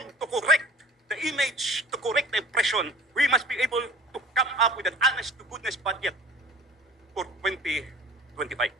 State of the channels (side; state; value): both; normal; correlation 0.45